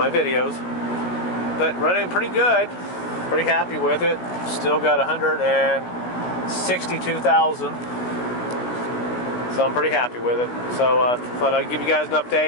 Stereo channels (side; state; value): right; late; 16 ms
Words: videos. But running pretty good, pretty happy with it. Still got 162,000. So I'm pretty happy with it. So thought I'd give you guys an